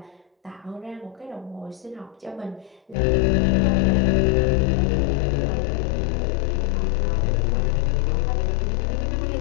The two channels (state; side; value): drops out; right; at 3.0 s